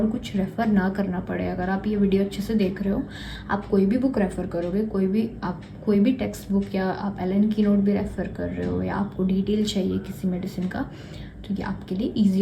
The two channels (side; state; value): both; identical; correlation 1.00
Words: कुछ रेफ़र ना करना पड़े। अगर आप ये वीडियो अच्छे से देख रहे हो, आप कोई भी बुक रेफ़र करोगे, कोई भी टेक्स्ट बुक, या आप एलन की नोट भी रेफ़र कर रहे हो, या आपको डिटेल चाहिए किसी मेडिसिन का, तो ये आपके लिए ईजी